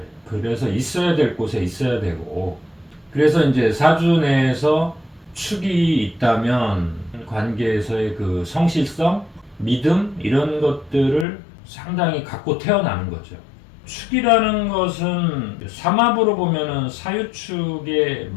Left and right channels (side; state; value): right; drops out; at 11.2 s